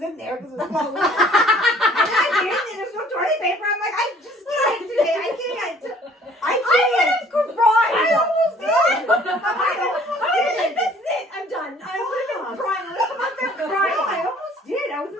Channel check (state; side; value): normal; both; correlation 0.55